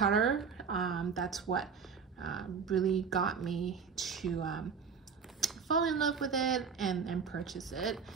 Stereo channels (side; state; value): left; quieter; 6.0 dB